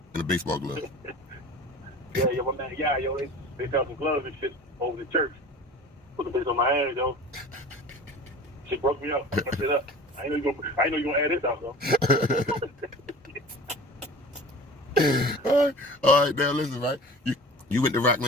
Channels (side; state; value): both; normal; correlation 0.39